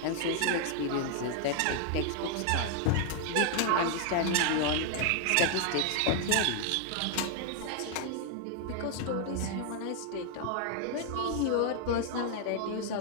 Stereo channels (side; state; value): both; different; correlation 0.00